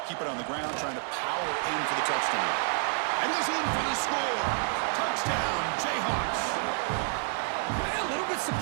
Keep it on the ground, trying to power in for the touchdown. And he's in for the score. Touchdown, Jayhawks. A little bit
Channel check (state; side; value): silent; left; 56 dB below the other